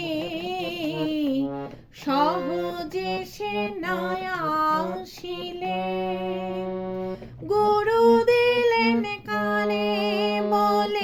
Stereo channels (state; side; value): identical; both; correlation 1.00